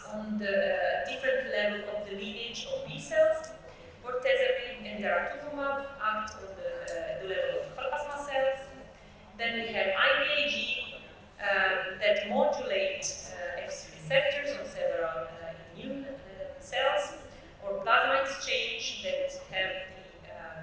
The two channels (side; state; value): both; identical; correlation 1.00